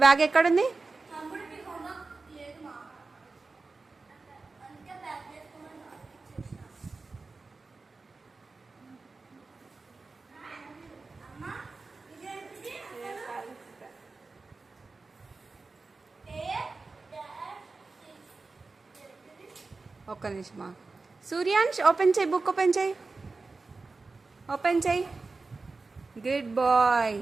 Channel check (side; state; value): left; quieter; 3.9 dB